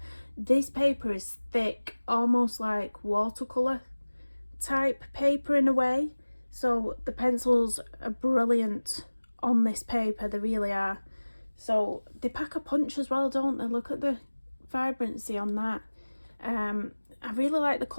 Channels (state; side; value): inverted; both; correlation -1.00